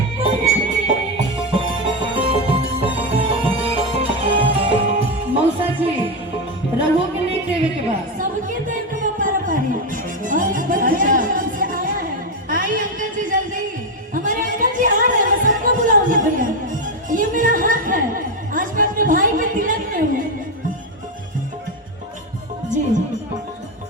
रहोगे नहीं देवे के बाद सबके देर के पारा पारी और बच्चे से आया है। आई अंकल जी जल्दी, हमारे अंकल जी आ रहे हैं, मैं सबको बुलाऊंगी भैया। ये मेरा हक है, आज मैं अपने भाई के तिलक में हूँ। जी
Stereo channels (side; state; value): both; normal; correlation 0.09